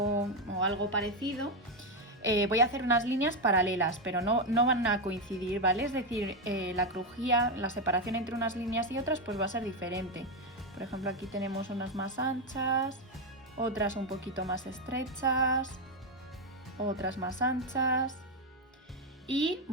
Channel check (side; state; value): both; normal; correlation 0.06